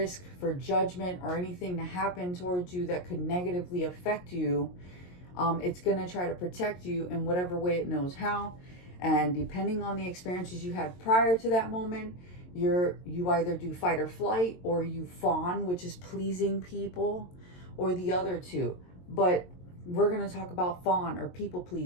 for judgment or anything to happen towards you that could negatively affect you, it's going to try to protect you in whatever way it knows how. And depending on the experiences you had prior to that moment, you either do fight or flight, or you fawn, which is pleasing people, or the other two. But we're going to talk about fawn or people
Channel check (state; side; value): late; right; 22 ms